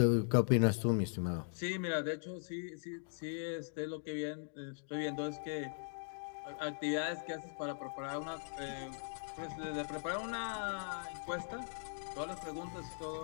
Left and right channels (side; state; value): right; silent; digital silence